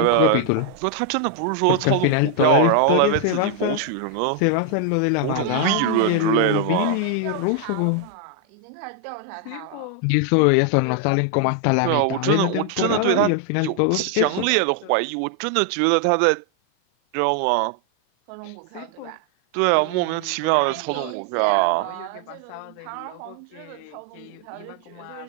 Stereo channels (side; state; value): both; different; correlation 0.00